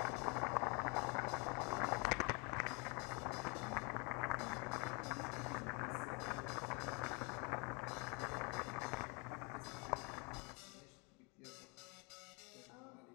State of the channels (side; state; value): right; quieter; 31.6 dB